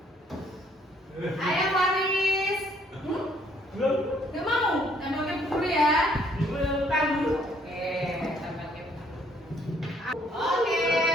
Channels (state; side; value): normal; both; correlation 0.65